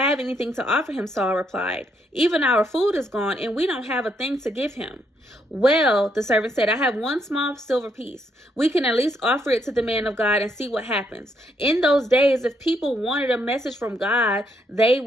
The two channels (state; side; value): normal; both; correlation 0.75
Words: anything to offer him," Saul replied. "Even our food is gone, and we don't have a thing to give him." "Well," the servant said, "I have one small silver piece. We can at least offer it to the man of God and see what happens. In those days, if people wanted a message from God, they